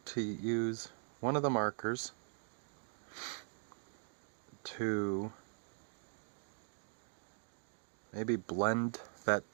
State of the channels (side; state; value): left; silent; digital silence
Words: use one of the markers to maybe blend that